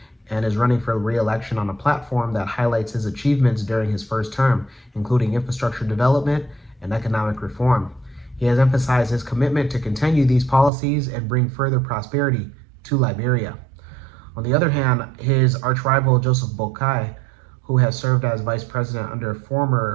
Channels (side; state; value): left; drops out; at 10.7 s